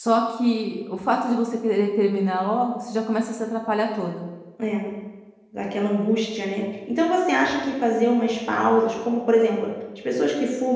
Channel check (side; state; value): both; identical; correlation 1.00